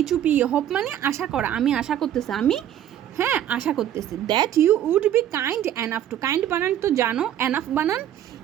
HOPE, হোপ মানে আশা করা, আমি আশা করতেছি, হ্যাঁ আশা করতেছি। That you would be kind enough to, kind বানান তো জানো, এনাফ বানান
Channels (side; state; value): left; quieter; 11.0 dB